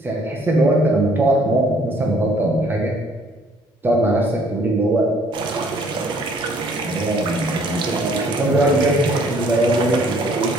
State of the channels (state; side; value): normal; both; correlation 0.61